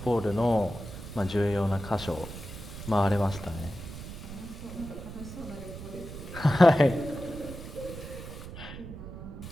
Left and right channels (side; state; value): right; noise; rumble, 11 dB below the sound